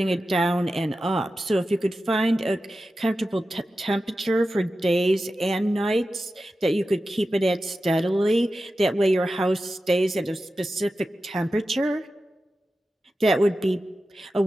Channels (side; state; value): both; normal; correlation 0.93